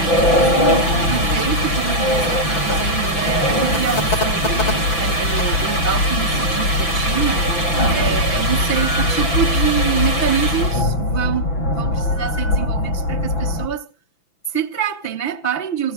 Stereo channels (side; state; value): right; late; 6.0 ms